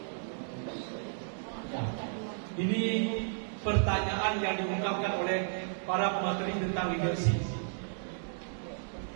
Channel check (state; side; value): silent; left; digital silence